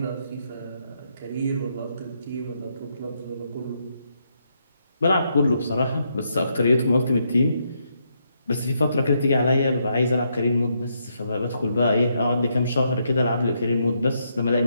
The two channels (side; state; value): both; inverted; correlation -0.78